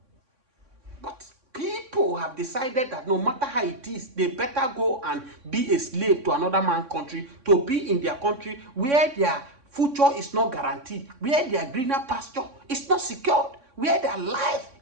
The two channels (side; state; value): left; late; 3.6 ms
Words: But people have decided that no matter how it is, they better go and be a slave to another man's country, to be in their country where their future is not guaranteed, where their greener pasture is not secured, where their life